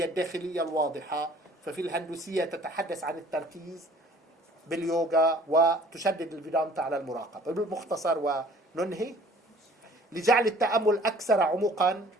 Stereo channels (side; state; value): both; normal; correlation 0.53